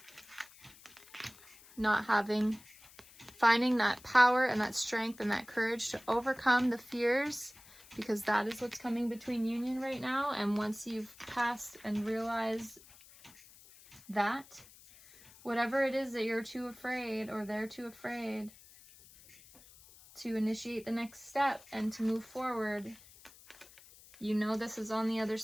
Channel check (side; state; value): left; noise; hiss, 22 dB below the sound